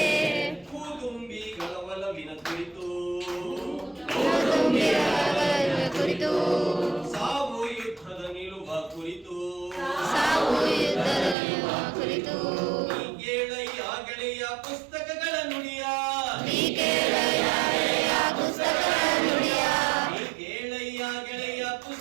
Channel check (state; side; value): drops out; left; at 11.4 s